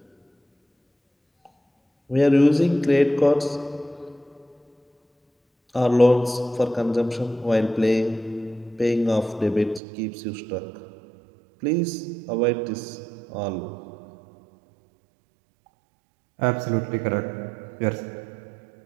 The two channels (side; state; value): left; drops out; at 9.8 s